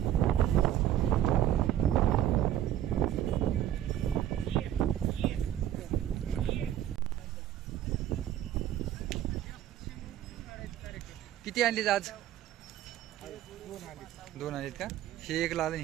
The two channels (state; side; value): quieter; left; 11.7 dB